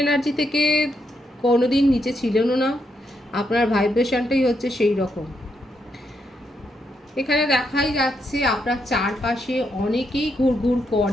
এনার্জি থেকে কোনোদিন নিচে ছিলেনও না, আপনার ভাইব্রেশনটাই হচ্ছে সেই রকম। এখানে দেখাই যাচ্ছে আপনার চারপাশে অনেকেই ঘুরঘুর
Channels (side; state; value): both; normal; correlation 0.80